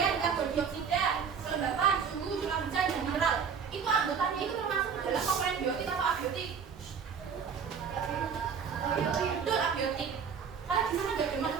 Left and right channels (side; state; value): left; quieter; 6.6 dB